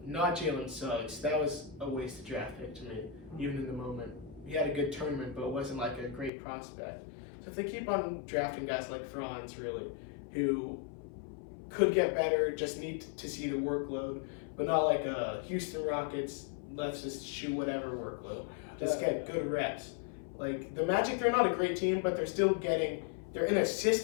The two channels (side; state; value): right; drops out; at 6.3 s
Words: Jalen Suggs. That was a wasted draft pick to me, even in the moment. He had a good tournament, but wasn't like a great prospect. So if they keep on drafting guys like Franz, really, who could get better, just need to see the workload, but not like a Houston Rockets, let's just shoot whatever workload. Just get good reps. Like, the Magic, they're not a great team, but they're still they're in a